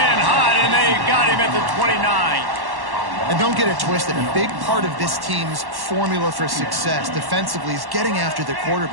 hot, and they got him at the 29. And don't get it twisted. A big part of this team's formula for success defensively is getting after the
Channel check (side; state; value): left; late; 1.1 ms